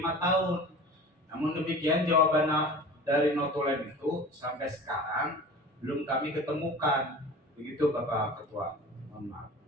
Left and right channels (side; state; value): both; normal; correlation 0.38